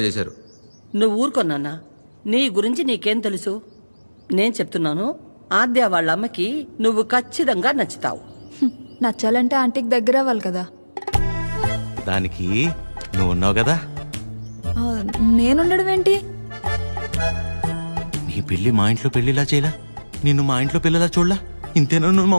చేశారు. నువ్వు ఊరుకొన్నానా? నీ గురించి నీకేం తెలుసు? నేను చెప్తున్నాను, ఆద్య వాళ్ళ అమ్మకి నువ్వు ఖచ్చితంగా నచ్చుతావు. నచ్చాలంటే ఆంటీకి దగ్గర అవ్వాలి కదా. దానికి నువ్వు ఉన్నావు కదా. ఆ, నేనుండడం ఏంటి? నీ పెళ్లి మా ఇంట్లో పెళ్లిలా చేయలా, నిన్ను మా ఇంట్లో పిల్లలా చూడలా. ఇంతేనా నువ్వు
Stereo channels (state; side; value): inverted; both; correlation -1.00